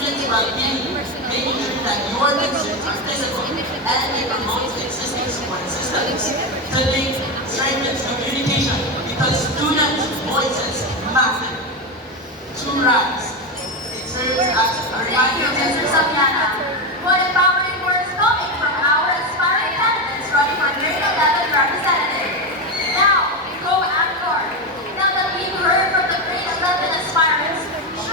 well-being, making sure that your concerns are physical and it promotes existing support systems. To link strengthens communication because students' voices matter. To rise, it serves as a Thank you, reminder Mr. Sabiana. What empowering words coming from our aspiring candidates running for grade 11 representative. Now, go Angkor. Now that we've heard from the grade 11 aspirants,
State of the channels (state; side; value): normal; both; correlation 0.13